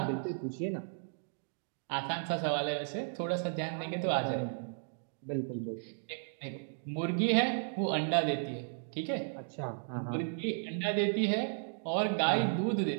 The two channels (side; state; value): left; silent; digital silence